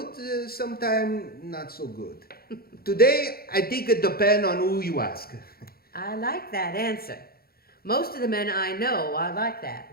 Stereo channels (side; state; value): right; late; 0.44 ms